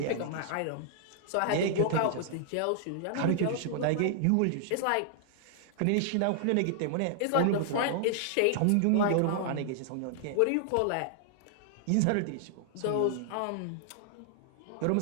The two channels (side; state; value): both; different; correlation -0.01